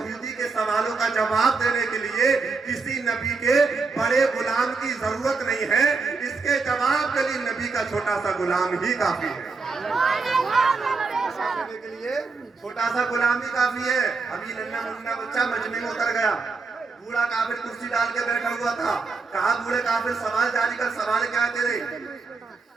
के सवालों का जवाब देने के लिए किसी नबी के बड़े गुलाम की जरूरत नहीं है, इसके जवाब के लिए नबी का छोटा सा गुलाम ही काफी है। के लिए छोटा सा गुलाम ही काफी है। अभी नन्ना मुन्ना बच्चा मजमे में उतर गया, बूढ़ा काफिर कुर्सी डाल के बैठा हुआ था। कहा, बूढ़े काफिर सवाल जारी कर, सवाल क्या है तेरे।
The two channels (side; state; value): left; quieter; 4.3 dB